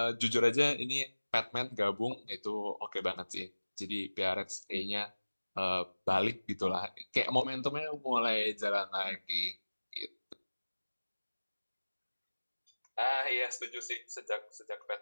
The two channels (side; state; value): both; inverted; correlation -1.00